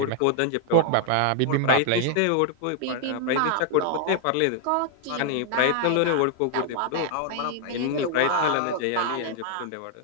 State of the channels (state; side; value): different; both; correlation -0.01